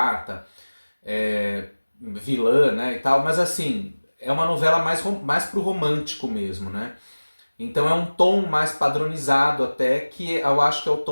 vilã, né, e tal, mas assim, é uma novela mais pro romântico mesmo, né? Então é um tom mais padronizado até, que eu acho que é o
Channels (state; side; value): inverted; both; correlation -1.00